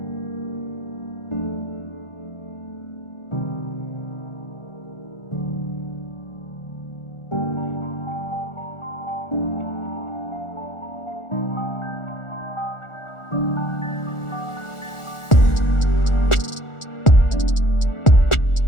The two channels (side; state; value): right; late; 1.4 ms